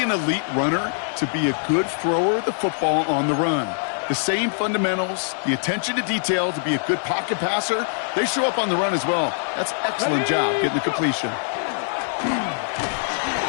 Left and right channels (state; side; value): silent; right; 63 dB below the other